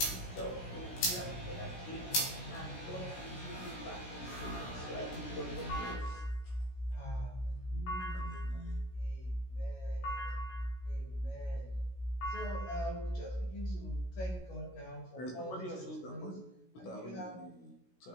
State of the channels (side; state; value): right; late; 16 ms